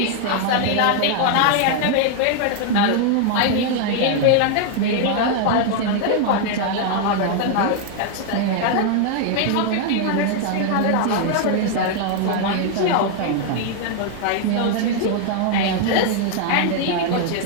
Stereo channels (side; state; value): both; different; correlation 0.00